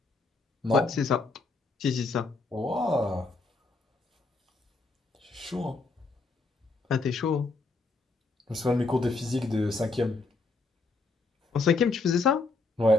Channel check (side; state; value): right; quieter; 3.6 dB